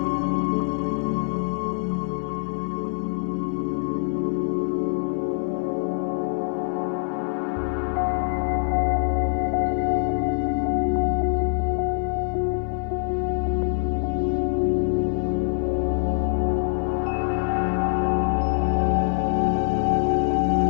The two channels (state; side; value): silent; right; 57 dB below the other